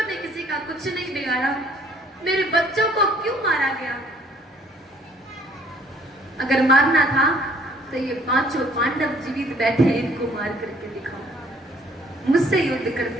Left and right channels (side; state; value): both; normal; correlation 0.60